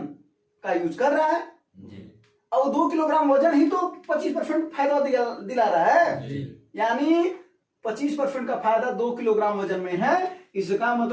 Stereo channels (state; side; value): identical; both; correlation 1.00